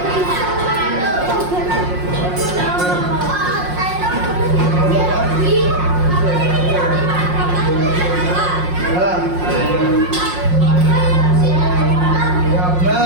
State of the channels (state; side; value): late; left; 5.6 ms